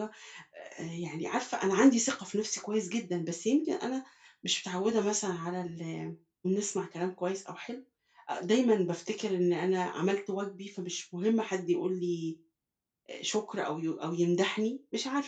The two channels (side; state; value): both; identical; correlation 1.00